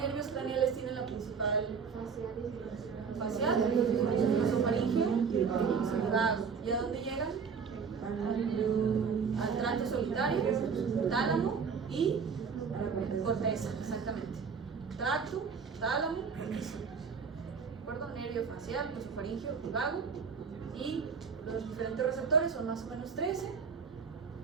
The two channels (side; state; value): left; quieter; 5.9 dB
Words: craneales tienen la principal? Facial, glosofaringeo y vago. ¿Y a dónde llegan? Al tracto solitario, tálamo y corteza, exactamente. Tracto, tálamo, corteza. ¿De acuerdo? Nervio facial, glosofaringeo y vago. Y los diferentes receptores son más o menos 13.